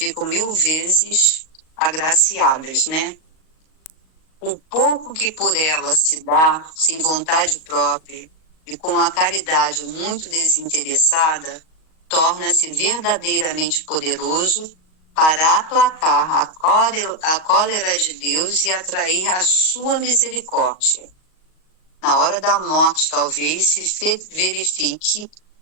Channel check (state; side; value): late; right; 38 ms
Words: 1000 vezes agraciadas, né? O pouco que por ela se dá, sem vontade própria, e com a caridade muito desinteressada, torna-se verdadeiramente poderoso para aplacar a cólera de Deus e atrair a sua misericórdia. Na hora da morte, talvez, se verifique